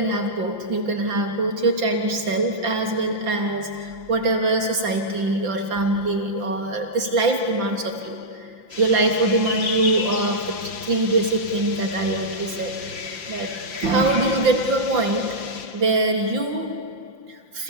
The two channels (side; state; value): left; late; 5.8 ms